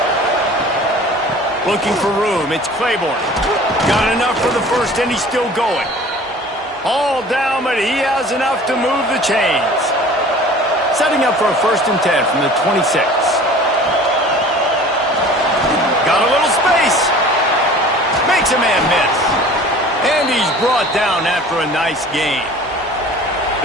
Looking for room. It's Claiborne. Got enough for the first, and he's still going. All down, but he has enough to move the chains. Setting up for a 1st and 10 from the 26. Got a little space. Makes a man miss. And he's brought down after a nice gain.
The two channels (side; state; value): both; normal; correlation 0.45